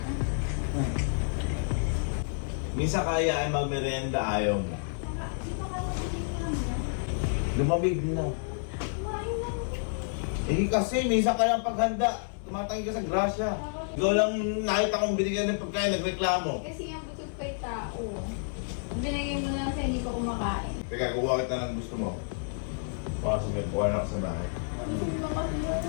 Minsan kaya ay magmerienda, ayaw mo. Lumamig na. Eh kasi, minsan ka lang paghanda. Tumatangin ka sa grasya. Ikaw lang nakita kong binigyan ng pagkain, nagreklamo. Kasi yung gusto pa yung tao. Binigay mo na kasi hindi ko kumakain. Teka, kukuha kita ng gusto mo. Baka sabihin, kuha na ako sa bahay.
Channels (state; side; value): silent; right; 58 dB below the other